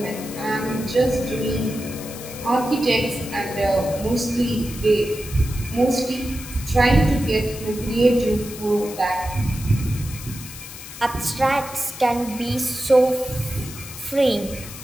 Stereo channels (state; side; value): noise; left; hiss, 13 dB below the sound